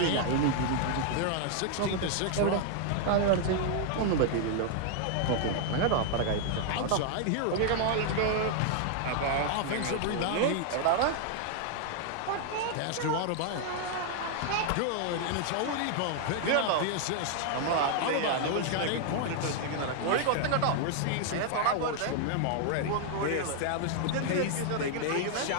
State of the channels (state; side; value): different; both; correlation 0.00